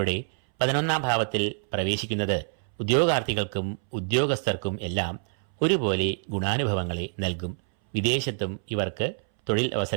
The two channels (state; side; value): silent; left; 60 dB below the other